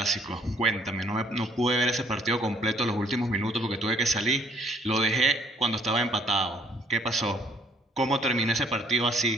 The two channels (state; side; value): normal; both; correlation 0.63